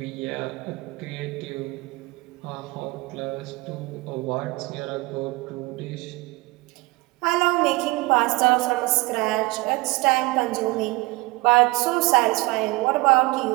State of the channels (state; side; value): quieter; left; 23.1 dB